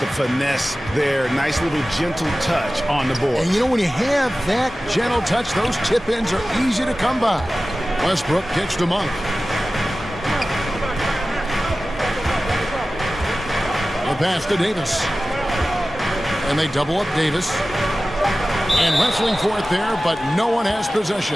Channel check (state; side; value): normal; both; correlation 0.96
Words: finesse there? Nice little gentle touch on the board. And you know, when you have that gentle touch, those tip-ins are easy to come by. Westbrook kicks to Monk. The pass to Davis. And they double up Davis. And wrestling for it there, but no one has